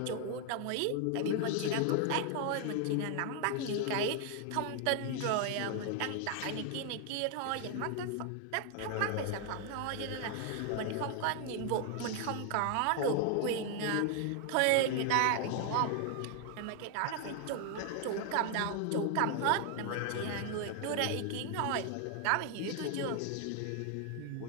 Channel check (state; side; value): different; both; correlation 0.00